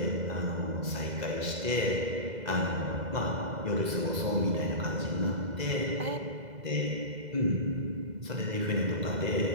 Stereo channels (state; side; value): late; left; 2.0 ms